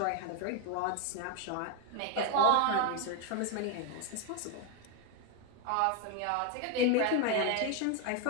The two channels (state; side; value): different; both; correlation 0.01